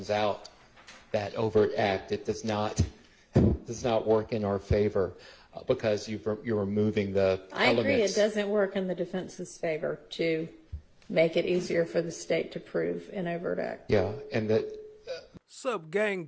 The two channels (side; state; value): both; identical; correlation 1.00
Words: out that overt act. It does not work in our favor because you're removing the elements. I agree. It doesn't work in the defense's favor to make it easier for the state to prove an overt act. Yeah, and that. Sup,